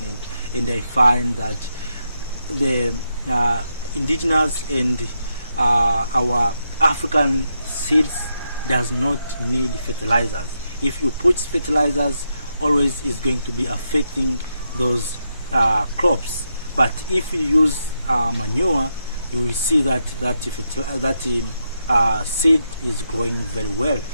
and I find that the indigenous and our African seeds does not need fertilizers. If you put fertilizers, always is going to be affecting those crops. But if you use manure, you will see that seed is growing very well.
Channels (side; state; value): both; inverted; correlation -0.83